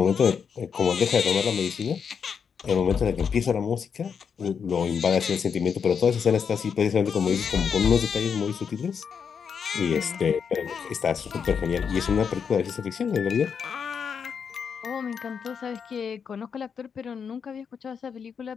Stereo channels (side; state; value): right; quieter; 6.7 dB